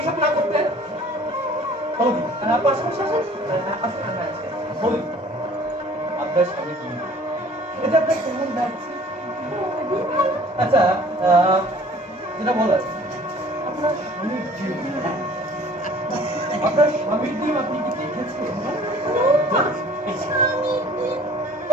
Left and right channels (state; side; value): normal; both; correlation 0.51